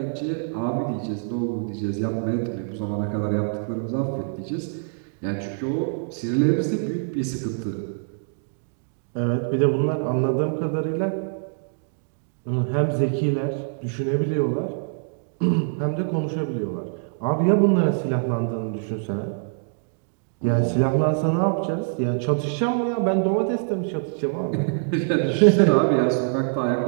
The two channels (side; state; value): left; silent; digital silence